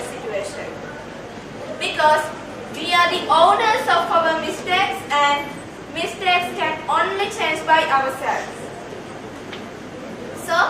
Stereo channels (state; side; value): identical; both; correlation 1.00